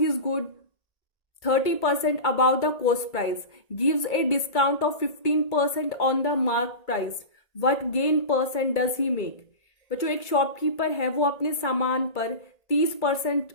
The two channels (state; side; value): late; right; 2.3 ms